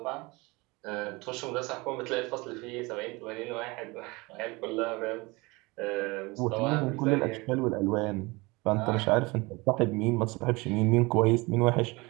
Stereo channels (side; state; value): left; quieter; 24.6 dB